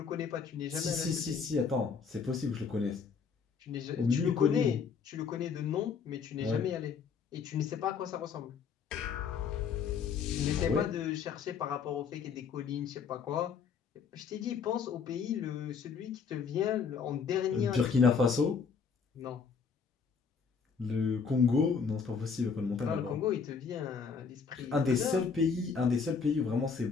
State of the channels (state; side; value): quieter; right; 5.9 dB